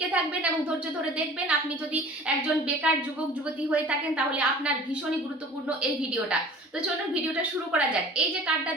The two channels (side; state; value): both; normal; correlation 0.45